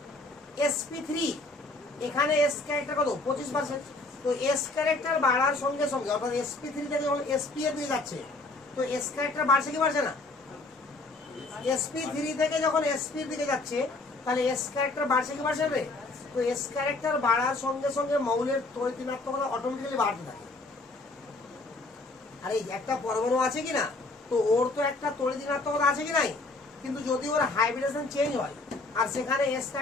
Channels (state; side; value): quieter; right; 3.2 dB